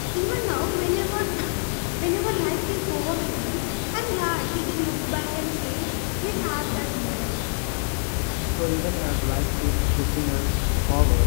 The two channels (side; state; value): right; silent; 57 dB below the other